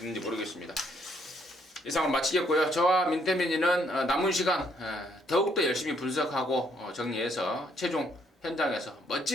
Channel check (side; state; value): both; normal; correlation 0.69